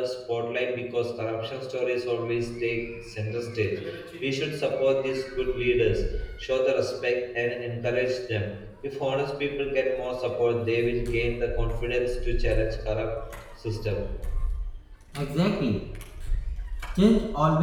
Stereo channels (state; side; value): identical; both; correlation 1.00